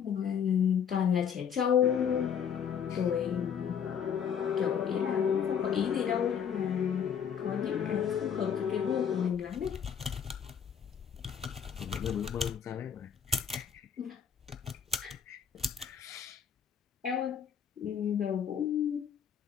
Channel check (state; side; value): quieter; right; 7.7 dB